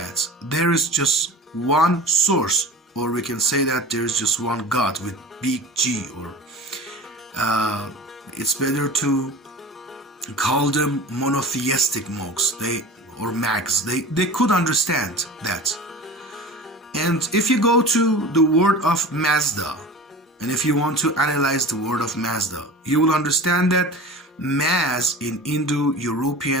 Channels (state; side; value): normal; both; correlation 0.36